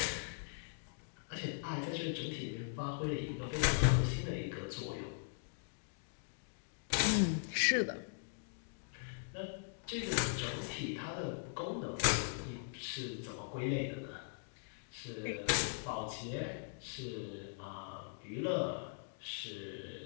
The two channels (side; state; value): right; silent; digital silence